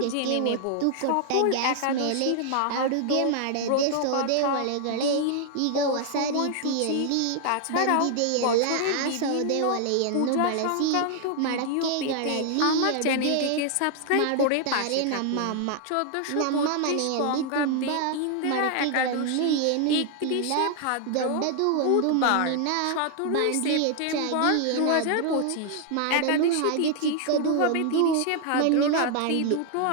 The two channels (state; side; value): different; both; correlation 0.00